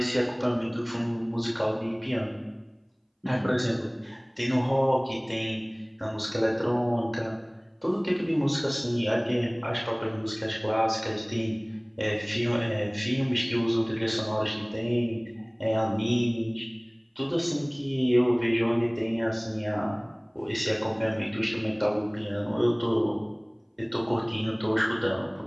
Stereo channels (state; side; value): identical; both; correlation 1.00